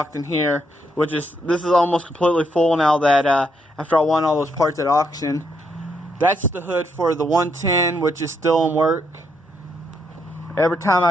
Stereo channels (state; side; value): normal; both; correlation 0.76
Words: in here, this is almost completely full now that after I won all those parts at auction. That's the hood for the 110, which is still in work. Every time I